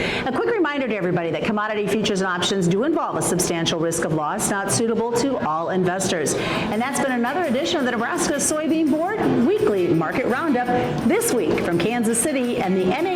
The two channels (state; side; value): identical; both; correlation 1.00